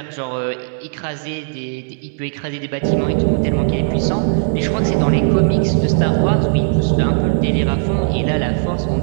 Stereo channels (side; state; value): left; silent; digital silence